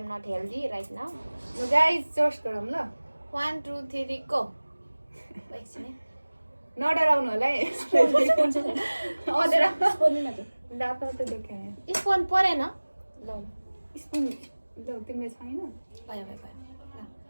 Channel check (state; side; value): inverted; both; correlation -1.00